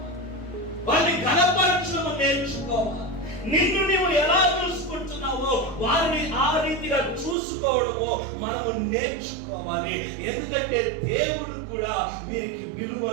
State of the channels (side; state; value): left; drops out; at 7.4 s